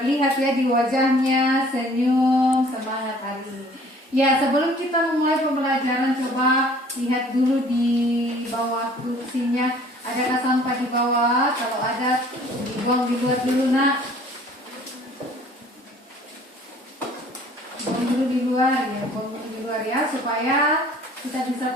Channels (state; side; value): normal; both; correlation 0.53